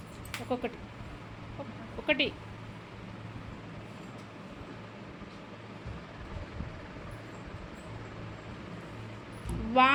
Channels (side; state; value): both; identical; correlation 1.00